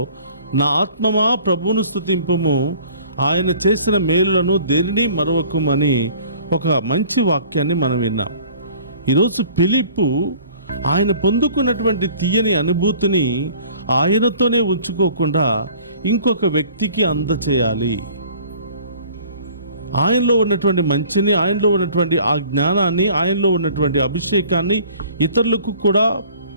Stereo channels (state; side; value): inverted; both; correlation -0.51